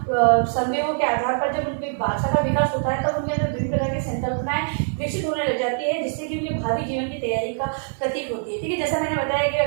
संदेहों के आधार पर जब उनकी भाषा का विकास होता है तब उनके अंदर विभिन्न प्रकार की संकल्पनाएं विकसित होने लग जाती है, जिससे कि उनके भावी जीवन की तैयारी का प्रतीक होती है। ठीक है, जैसा मैंने बताया कि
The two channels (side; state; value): left; silent; digital silence